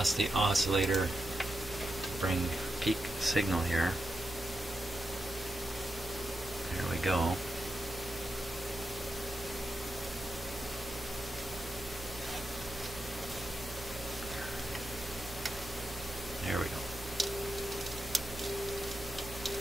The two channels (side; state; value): both; normal; correlation 0.87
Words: the oscillator to bring peak signal here. There we go. There we go.